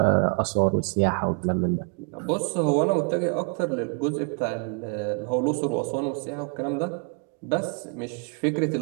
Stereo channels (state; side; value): quieter; left; 35.8 dB